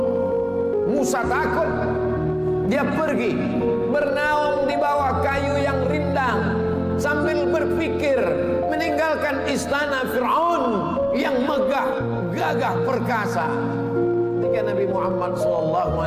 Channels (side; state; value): both; identical; correlation 1.00